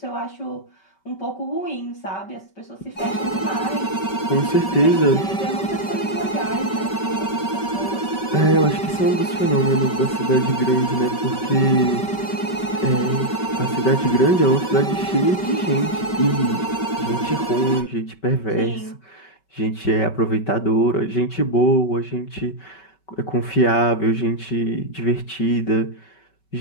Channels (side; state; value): right; late; 5.2 ms